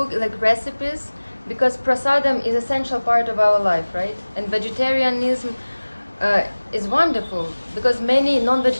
recipes, because prasadam is essential part of our life, right? And vegetarianism is wonderful, because many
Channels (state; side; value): inverted; both; correlation -1.00